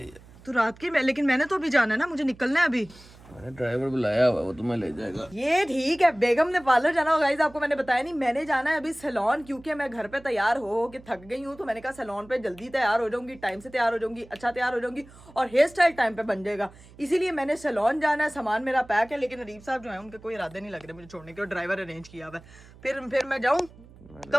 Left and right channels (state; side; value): noise; right; hum, 22 dB below the sound